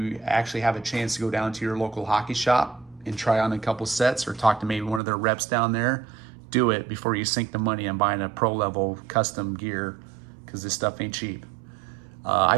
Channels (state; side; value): drops out; left; at 5.0 s